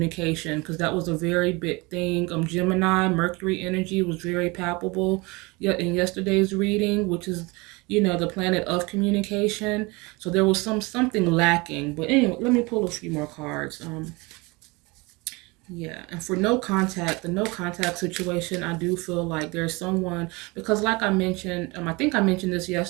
because that was a very big thing. Gemini Mercury energy was very palpable in yesterday's reading, which is, the planet of communication. So there was something lacking. But anyway, let me pull a few more cards. Yeah, and for no contact, the no contact situation, I do feel like there's someone, because like I mentioned, I think I mentioned this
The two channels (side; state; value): left; quieter; 25.6 dB